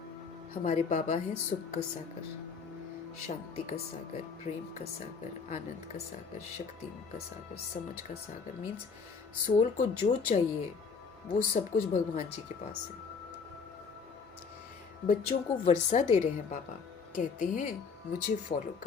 हमारे बाबा हैं सुख का सागर, शांति का सागर, प्रेम का सागर, आनंद का सागर, शक्तियों का सागर, समझ का सागर। मीन्स सोल को जो चाहिए वो सब कुछ भगवान जी के पास है। बच्चों को वर्षा दे रहे हैं बाबा, कहते हैं मुझे फॉलो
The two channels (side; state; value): right; quieter; 5.4 dB